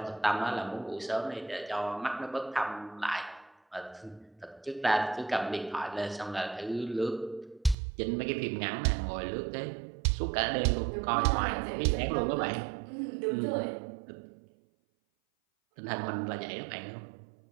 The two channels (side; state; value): left; drops out; at 7.8 s